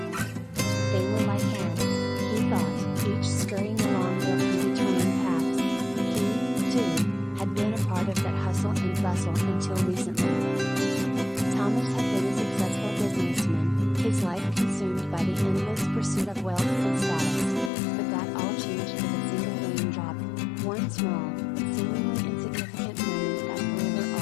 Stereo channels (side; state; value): right; drops out; at 17.7 s